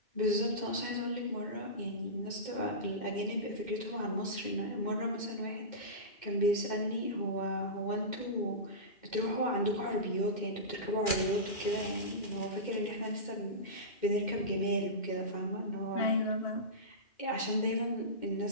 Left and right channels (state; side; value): late; right; 2.4 ms